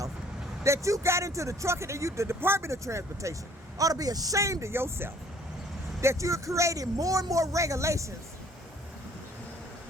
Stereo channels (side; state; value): both; normal; correlation 0.57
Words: that you got into the trucking and the Department of Transportation ought to be ashamed of yourself that you're creating more and more regulations